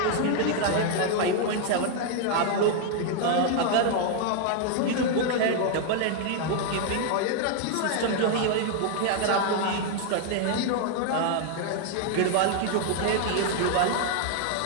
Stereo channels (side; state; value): both; different; correlation 0.00